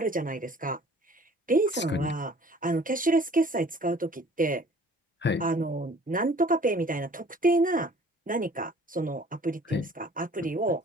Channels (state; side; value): normal; both; correlation 0.52